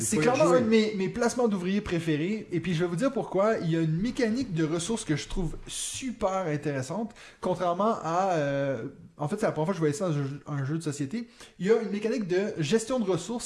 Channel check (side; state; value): both; identical; correlation 1.00